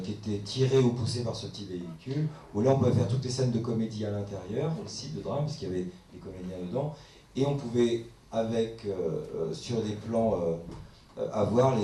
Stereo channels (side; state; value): both; identical; correlation 1.00